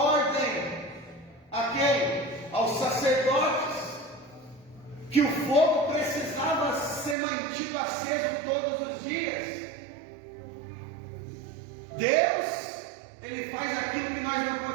a quem? Aos sacerdotes, que o fogo precisava ser mantido aceso todos os dias. Deus, Ele faz aquilo que nós não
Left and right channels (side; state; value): left; drops out; at 7.2 s